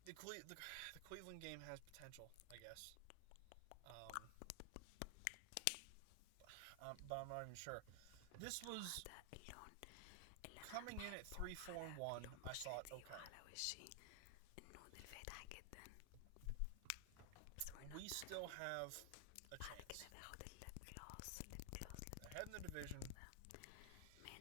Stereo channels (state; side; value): different; both; correlation 0.00